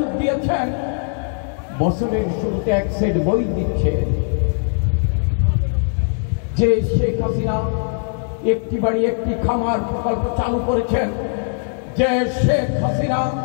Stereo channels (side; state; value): right; silent; 58 dB below the other